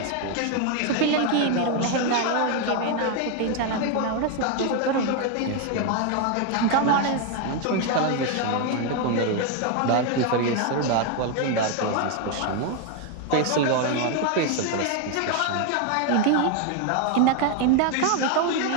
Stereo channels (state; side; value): different; both; correlation 0.01